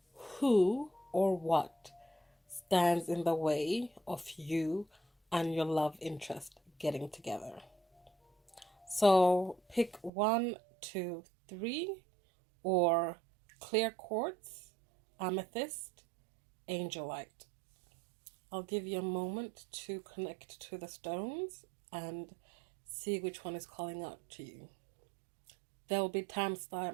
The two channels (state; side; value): drops out; left; at 10.1 s